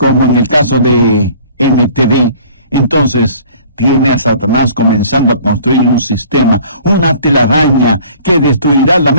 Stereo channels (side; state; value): both; inverted; correlation -0.51